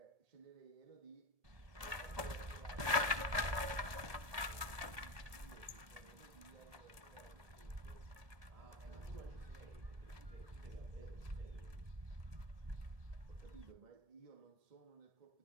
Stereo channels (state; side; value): late; left; 1.7 ms